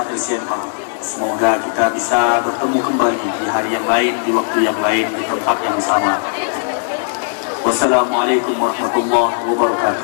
LCMA. Semoga kita bisa bertemu kembali di hari yang lain, di waktu yang lain, di tempat yang sama. Wassalamualaikum warahmatullahi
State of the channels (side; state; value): right; silent; digital silence